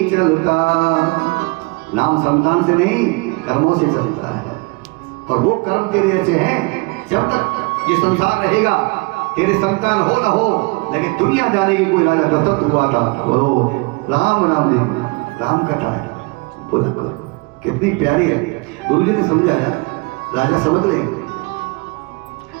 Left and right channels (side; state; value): left; quieter; 27.9 dB